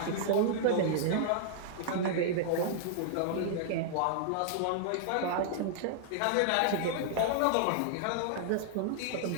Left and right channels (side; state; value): both; different; correlation -0.01